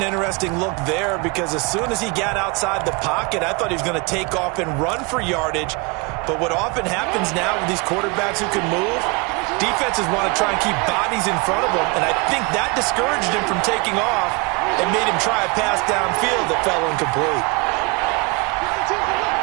interesting look there because as soon as he got outside the pocket, I thought he was going to take off and run for yardage. But what often happens now with these quarterbacks who can move, defenses want to try and keep bodies in front of them, and I think that discouraged him from taking off and made him try a pass downfield that fell incomplete.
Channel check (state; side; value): quieter; left; 27.9 dB